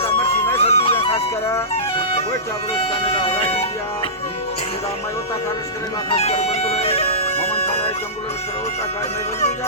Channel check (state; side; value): normal; both; correlation -0.20